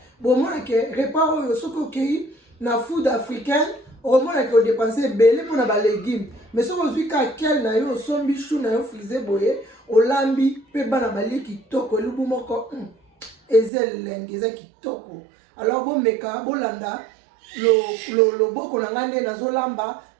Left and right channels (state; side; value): drops out; left; at 13.7 s